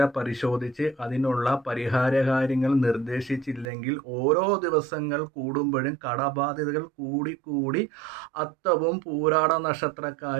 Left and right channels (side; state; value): left; drops out; at 3.7 s